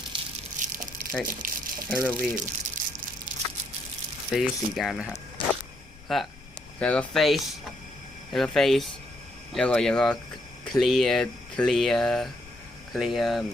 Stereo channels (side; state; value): left; noise; rumble, 22 dB below the sound